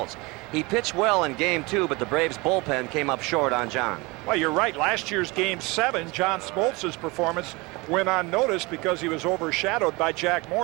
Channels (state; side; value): quieter; left; 24.9 dB